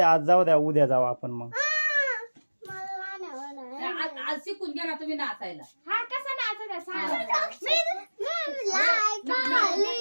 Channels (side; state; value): both; inverted; correlation -1.00